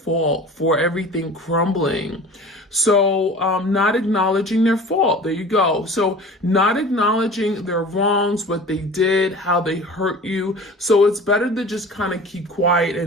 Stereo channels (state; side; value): normal; both; correlation 0.40